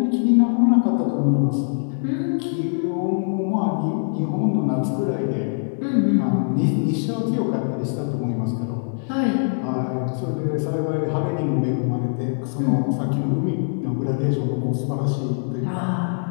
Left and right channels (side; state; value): right; silent; digital silence